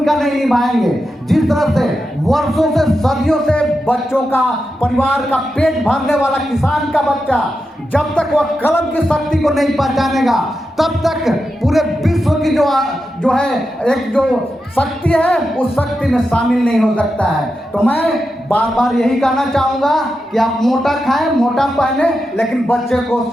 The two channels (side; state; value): both; normal; correlation 0.89